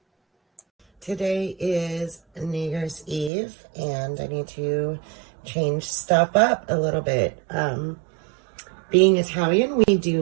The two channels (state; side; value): drops out; left; at 3.3 s